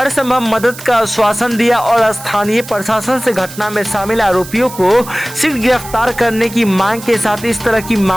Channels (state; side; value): noise; right; hiss, 15 dB below the sound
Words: संभव मदद का आश्वासन दिया और स्थानीय प्रशासन से घटना में शामिल आरोपियों को शीघ्र गिरफ्तार करने की मांग के साथ इस तरह की